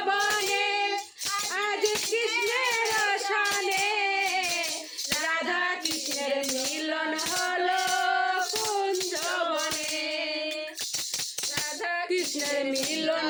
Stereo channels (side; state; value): both; identical; correlation 1.00